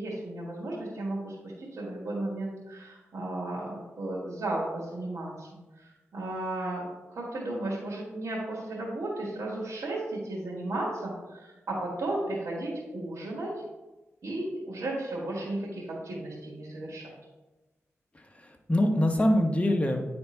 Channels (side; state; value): both; normal; correlation 0.88